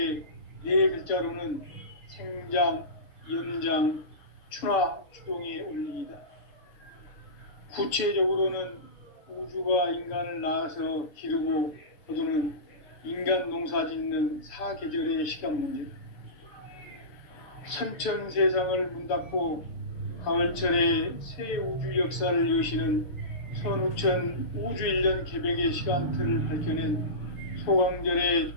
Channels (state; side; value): late; right; 7.0 ms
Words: 네 글자로는 생장, 연장, 추나 추동의 원리이다. 구체적으로는 우주가 인간을 낳아서 기르고 거두는 인간 농사 짓는 사계절의 시간 문제. 선천 세상을 문 닫고 가을철에 새 우주 역사를 여시는 선우천 우주 1년 개백의 시간틀을 밝혀낸 소강절의